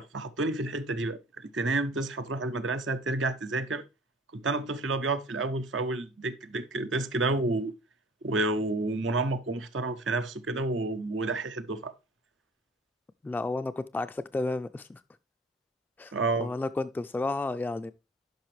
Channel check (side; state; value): both; normal; correlation 0.48